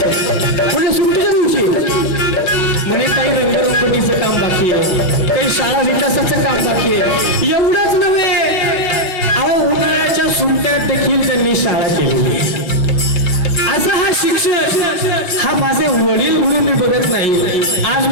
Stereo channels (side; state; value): right; late; 5.5 ms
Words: म्हणजे सुट्टीच्या दिवशी म्हणे काही रंगरंगोटीचं काम बाकी आहे काही शाळा विकासाचं काम बाकी आहे एवढंच नव्हे अहो उन्हाळ्याच्या सुट्ट्यात देखील त्यांनी शाळा केलेली असं हा शिक्षक हा माझे वडील म्हणून मी बघत नाही आज